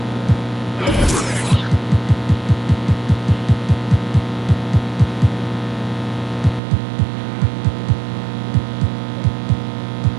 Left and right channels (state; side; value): drops out; left; at 6.6 s